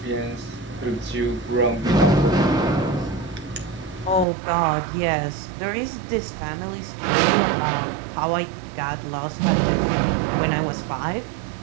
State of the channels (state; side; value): drops out; left; at 4.2 s